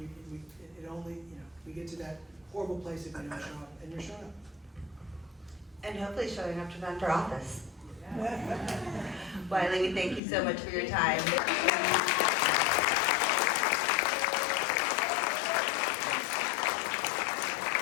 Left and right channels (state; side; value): drops out; right; at 10.2 s